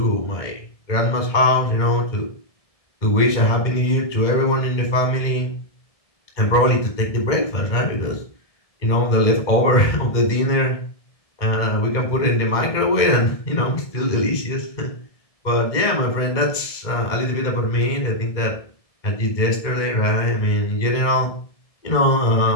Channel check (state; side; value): late; right; 1.7 ms